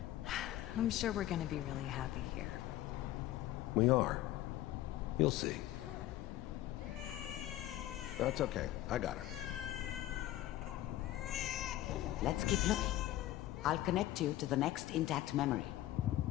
I'm sure we're gonna be really happy here. We are. You'll see. That's okay. I got it. Let's keep looking. I'll connect you to the next intact memory.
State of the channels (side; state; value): right; quieter; 14.6 dB